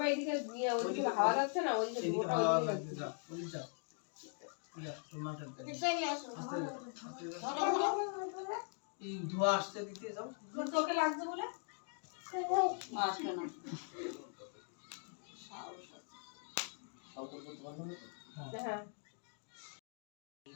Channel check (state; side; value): silent; right; 51 dB below the other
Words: এদিকে নিয়ে ওইদিকে হাওয়া যাচ্ছে না, ওইদিকে ওটা ওইদিকে যাচ্ছে। এই ধোয়া আসছে দিতে যাও, তোকে লাগছে বলে আসবে না। হ্যাঁ